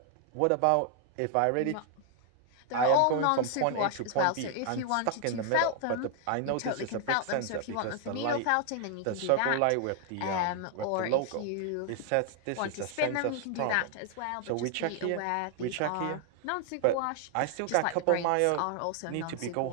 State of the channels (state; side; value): different; both; correlation 0.00